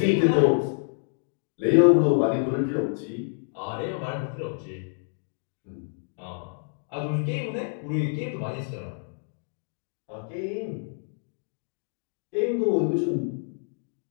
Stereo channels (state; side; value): silent; right; digital silence